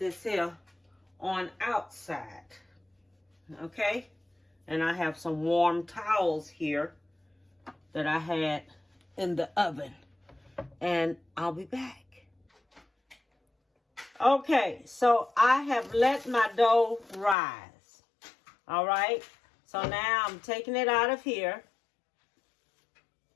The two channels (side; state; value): right; drops out; at 17.4 s